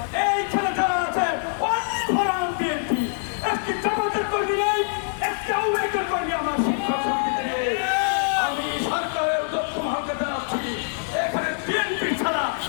এইখানে যারা আছে অনেক বিএনপি একটি জামাতের কর্মী নেই, একটি আওয়ামী লীগের কর্মী আমার শিক্ষক সমিতিতে নেই। আমি সরকারের দক্ষ মহাকে জানাচ্ছি, এখানে বিএনপি ছাড়া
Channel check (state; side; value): silent; right; digital silence